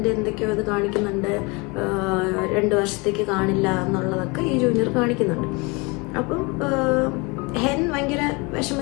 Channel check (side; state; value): right; quieter; 27.7 dB